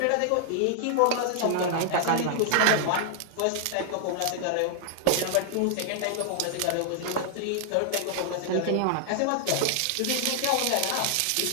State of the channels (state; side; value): different; both; correlation 0.00